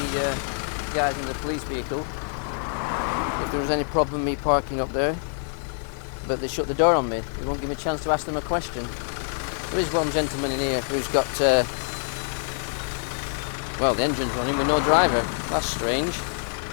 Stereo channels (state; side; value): silent; right; 61 dB below the other